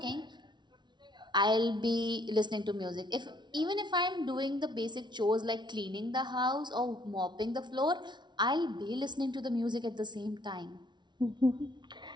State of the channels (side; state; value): left; late; 0.21 ms